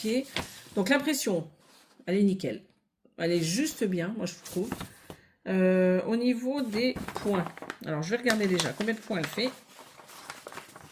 Donc, l'impression, elle est nickel. Elle est juste bien, moi, je trouve. Au niveau des points. Alors, je vais regarder déjà combien de points elle fait.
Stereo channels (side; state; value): both; identical; correlation 1.00